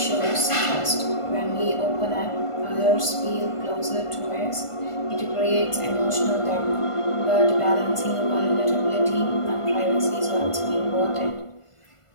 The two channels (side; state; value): right; late; 1.5 ms